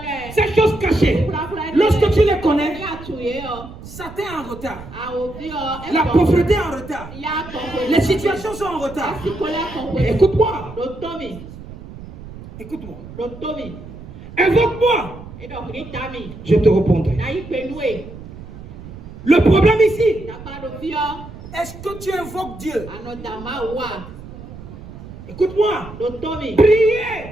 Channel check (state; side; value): noise; right; rumble, 15 dB below the sound